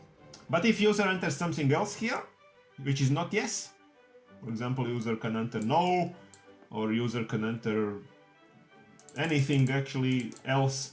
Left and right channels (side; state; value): both; identical; correlation 1.00